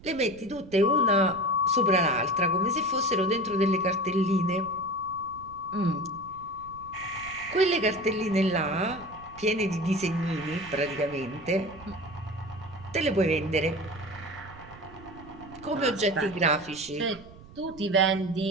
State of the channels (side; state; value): right; noise; rumble, 20 dB below the sound